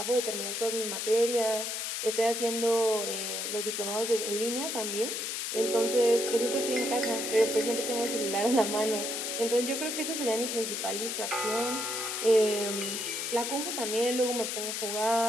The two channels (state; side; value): noise; left; hiss, 3 dB below the sound